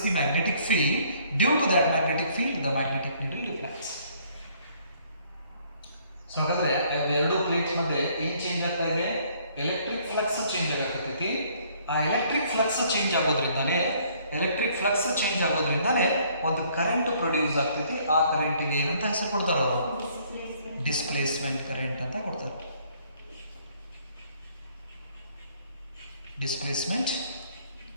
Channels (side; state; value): both; inverted; correlation -0.62